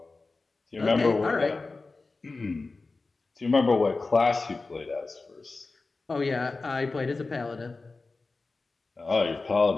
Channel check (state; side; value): quieter; right; 3.7 dB